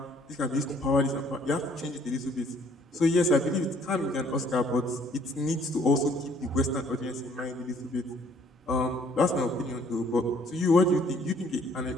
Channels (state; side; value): normal; both; correlation 0.62